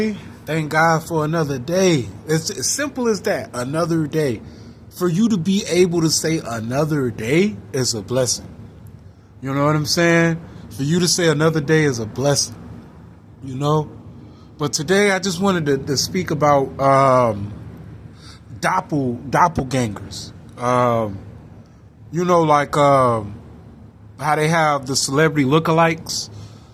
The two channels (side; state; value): both; identical; correlation 1.00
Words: Thank God for another day. It's as simple as that. Another day. For you to be able to say another day is a blessing. You know what I'm saying? For you to say another day is a blessing. You know? But today I just wanted to speak about doppelgangers. You know, like how they have the celebrity lookalikes.